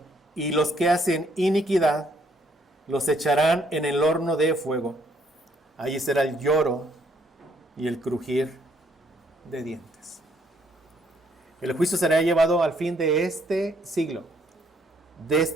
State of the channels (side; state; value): both; normal; correlation 0.68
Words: y los que hacen iniquidad, los echarán en el horno de fuego. Allí será el lloro y el crujir de dientes. El juicio será llevado al fin de este siglo, de